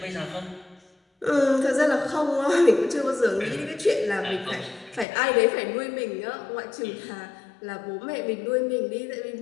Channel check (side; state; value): right; drops out; at 5.1 s